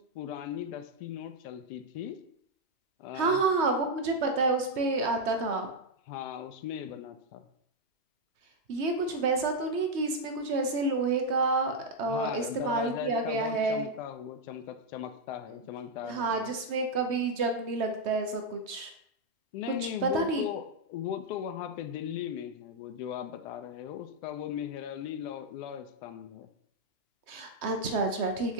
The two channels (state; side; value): late; left; 3.2 ms